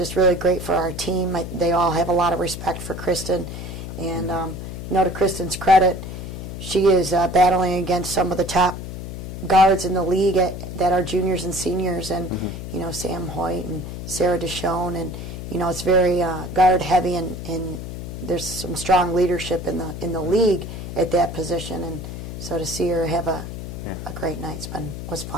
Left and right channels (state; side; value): noise; left; hum, 8 dB below the sound